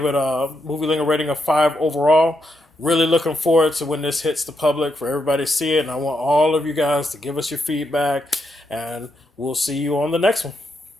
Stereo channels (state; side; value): normal; both; correlation 0.81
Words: it a movie lingo rating of 5 overall. Really looking forward to when this hits the public for everybody to see it. And I want all of you guys to give us your feedback. And we'll see you on the next one.